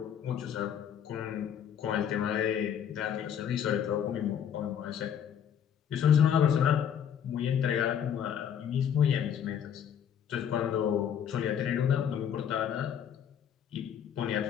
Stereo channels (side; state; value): right; quieter; 8.8 dB